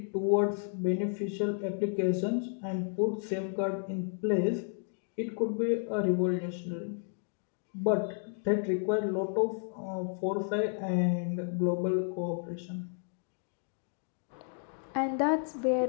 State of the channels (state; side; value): silent; right; 56 dB below the other